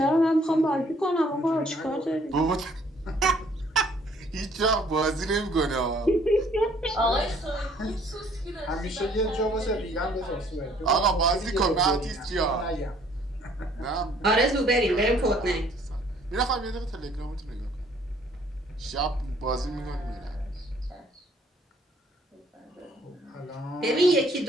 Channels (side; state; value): both; normal; correlation 0.60